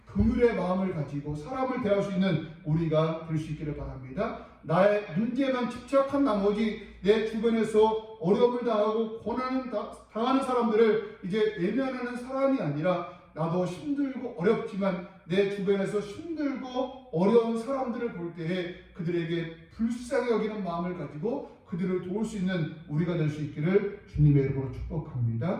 긍휼의 마음을 가지고 사람을 대할 수 있는 우리가 될 수 있기를 바랍니다. 나의 문제만 집착한 나머지 내 주변에서 어려움을 당하고 고난을 당하는 사람들을 이제 외면하는 사람이 아니라 나도 힘들고 어렵지만 내 주변에서 힘들고 어려운 사람들을 볼 때에 그들에게 불쌍히 여기는 마음을 가지고 그들을 도울 수 있는 우리가 될 수 있기를 주님의 이름으로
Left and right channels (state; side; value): identical; both; correlation 1.00